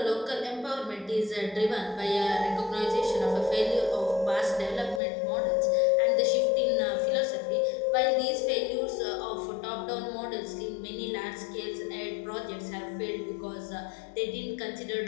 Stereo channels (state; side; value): drops out; right; at 5.0 s